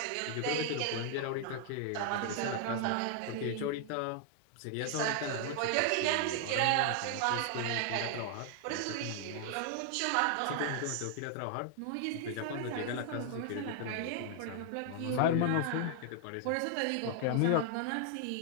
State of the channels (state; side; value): different; both; correlation 0.00